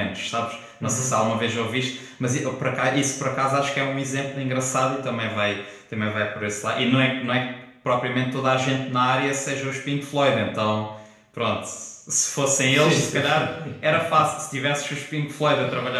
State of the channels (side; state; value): both; identical; correlation 1.00